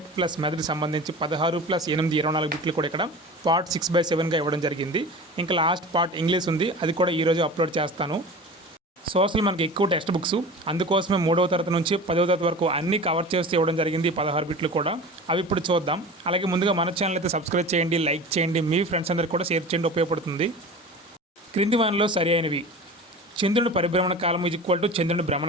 plus method సంబంధించి 16+8 24 బిట్లు కూడా ఇక్కడ పార్ట్ 6/7గా ఇవ్వడం జరిగింది. ఇంకా లాస్ట్ పార్ట్ ఇంగ్లీష్ ఉంది, అది కూడా ఈరోజు అప్లోడ్ చేస్తాను. సోషల్ మనకి ఎక్కువ టెక్స్ట్ బుక్స్, అందుకోసమే 3వ తరగతి నుంచి 10వ తరగతి వరకు అన్నీ కవర్ చేస్తూ ఇవ్వడం జరిగింది. 16 బిట్లు కూడా అవి ఇప్పుడు చూద్దాం. అలాగే ముందుగా మన ఛానల్ అయితే సబ్స్క్రైబ్ చేయండి, లైక్ చేయండి, మీ ఫ్రెండ్స్ అందరికీ కూడా షేర్ చేయండి, ఉపయోగపడుతుంది. క్రింది వానిలో సరి అయినవి: చంద్రుని పరిభ్రమణ కాలము = చంద్రుని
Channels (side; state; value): both; normal; correlation 0.35